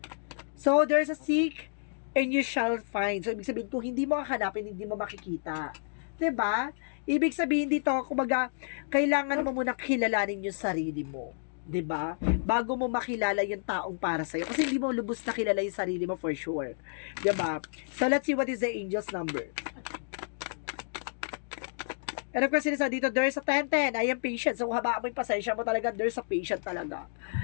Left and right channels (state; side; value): silent; right; digital silence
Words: So there's a seek and you shall find. So, ibig sabihin, kung hindi mo hahanapin, hindi mo makikita. 'Di ba? Ibig sabihin dito, kumbaga, kailangan mo muna kilalanin yung sarili mo. 'Di ba? Bago mo makilala yung taong para sa'yo. Kasi hindi mo lubos na kilala yung sarili mo for sure. 'Di ba? So, let's see what is the angel's number. And of course, sinisa dito, there's a 10-10. I am patient. So, habaan mo yung pasensya mo talaga, there's a patient talaga.